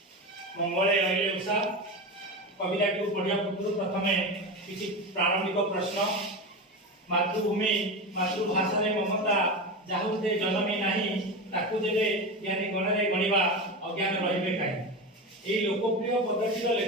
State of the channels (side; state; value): both; normal; correlation 0.22